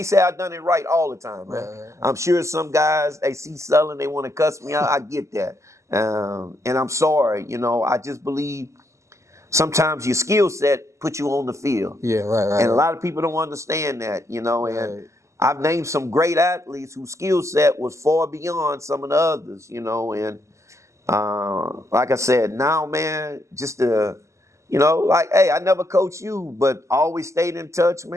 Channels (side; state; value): left; late; 0.14 ms